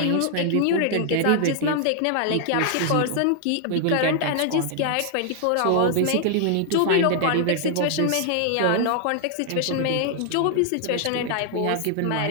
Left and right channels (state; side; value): different; both; correlation 0.00